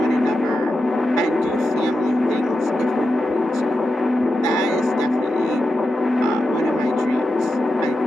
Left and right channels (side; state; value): both; normal; correlation 0.89